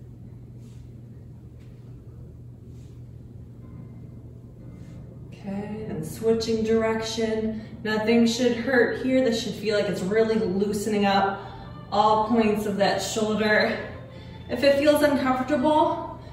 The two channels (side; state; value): both; identical; correlation 1.00